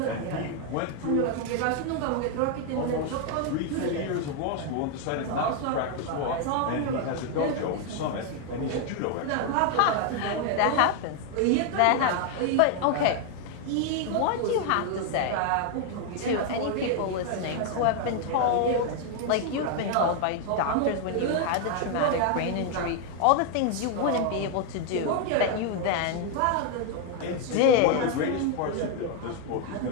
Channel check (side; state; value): both; different; correlation 0.00